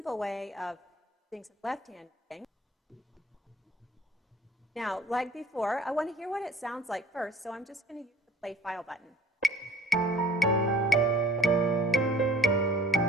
way of doing some left-hand thing. Now, like before, I want to hear what it sounds like first, so I'm just going to use the play file button.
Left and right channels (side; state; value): both; normal; correlation 0.51